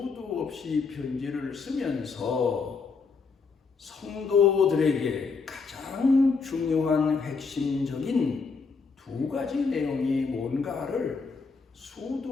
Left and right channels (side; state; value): right; quieter; 4.8 dB